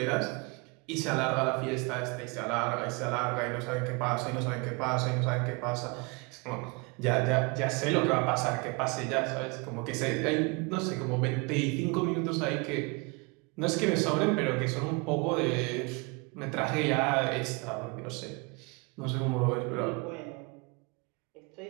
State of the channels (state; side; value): quieter; left; 29.5 dB